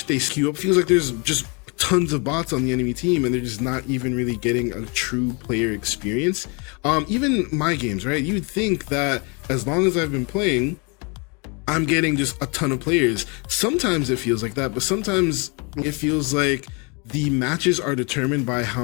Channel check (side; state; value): right; quieter; 32.3 dB